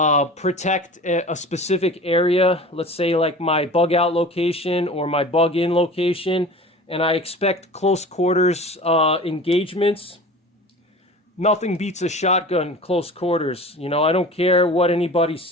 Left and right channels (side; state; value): both; normal; correlation 0.39